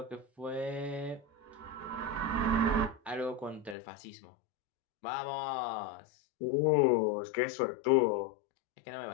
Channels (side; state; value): right; drops out; at 3.8 s